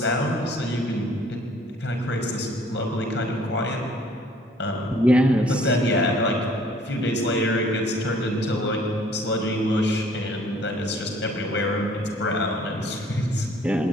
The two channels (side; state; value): both; normal; correlation 0.57